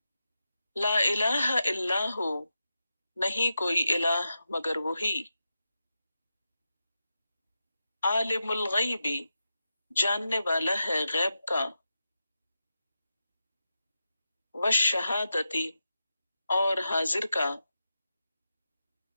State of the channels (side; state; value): both; inverted; correlation -0.89